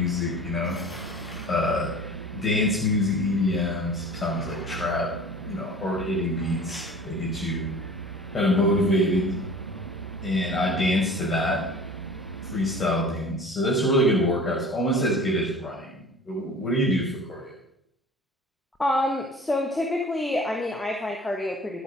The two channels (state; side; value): normal; both; correlation 0.42